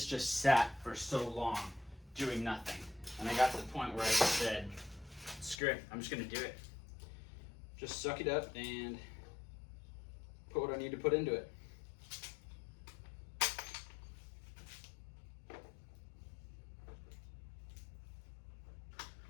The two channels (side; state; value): right; drops out; at 5.6 s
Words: just sat for so long doing nothing. And I got to the point where I just said, screw it, I'm just gonna do it. Just suck it up and put what I need to put into it.